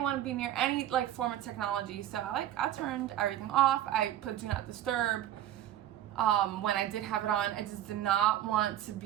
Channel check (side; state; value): left; quieter; 12.2 dB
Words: want to be near any like form of technology, so I turned everything off. I put do not disturb. When I did have it on, I just did not want to